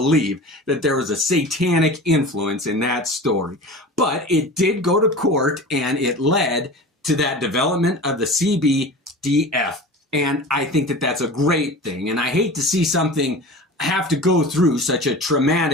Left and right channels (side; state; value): both; normal; correlation 0.35